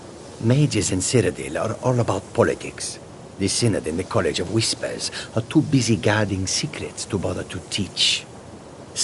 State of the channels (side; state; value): both; identical; correlation 1.00